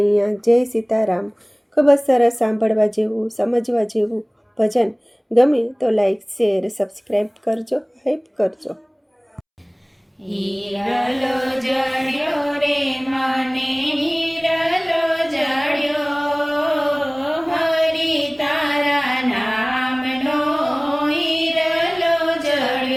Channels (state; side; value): identical; both; correlation 1.00